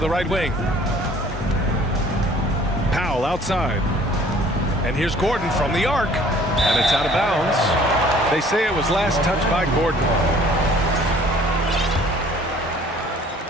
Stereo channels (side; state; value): both; normal; correlation 0.54